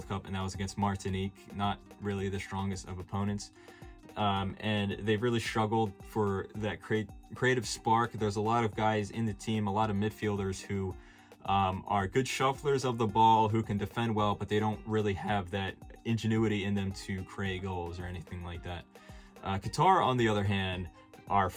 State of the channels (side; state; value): both; identical; correlation 1.00